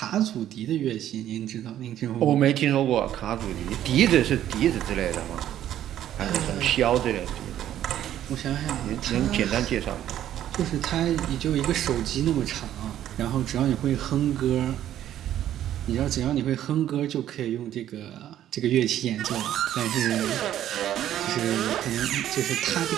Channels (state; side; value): quieter; left; 11.7 dB